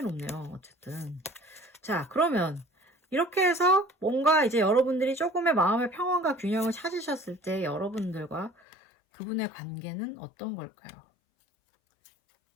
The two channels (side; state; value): right; drops out; at 8.5 s